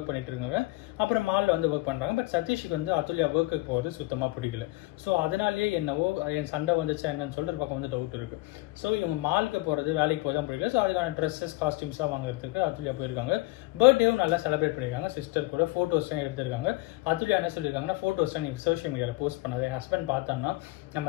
பண்ணிட்டு இருக்காங்க. அப்புறம் மாலில் வந்து ஒர்க் பண்ணுறாங்க. பட் சதீஷுக்கு வந்து அதுல்யா ஒர்க்குக்கு போகிறது சுத்தமாக பிடிக்கல. ஸோ அதனாலேயே என்னவோ என் சண்டை வந்துச்சா என்னன்னு சொல்லிட்டு ஒரு பக்கம் வந்து டவுட் இருக்குது. ஸோ இவங்க மாலுக்கு போகிறது வேலைக்கு போய் தான் பிடிக்கல. ஸோ அதுக்கான ட்ரெஸ்ஸஸ் காஸ்டியூம்ஸ்லாம் வாங்குறதுக்கு அதுல்யா போயிருக்காங்க. பர்த்டேவும் நல்லா செலிப்ரேட் பண்ணியிருக்காங்க. சிஸ்டர் கூட ஃபோட்டோஸ்லாம் எடுத்திருக்காங்க. அதுல்யா என்ன சொல்லியிருக்காங்கன்னா ஃபோட்டோஸ்லாம் நீ சோஷியல் மீடியாவில் போஸ்ட் பண்ணாது, என் ஹஸ்பண்ட் பார்த்தான்னா நம்ம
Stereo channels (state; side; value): quieter; right; 21.4 dB